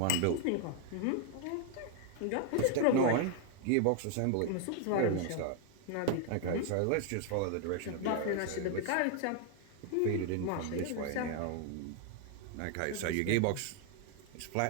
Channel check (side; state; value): both; different; correlation 0.00